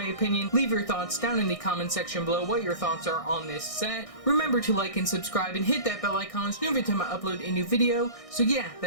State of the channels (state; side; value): late; right; 1.6 ms